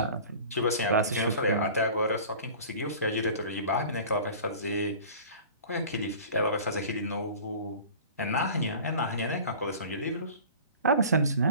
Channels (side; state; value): both; inverted; correlation -0.42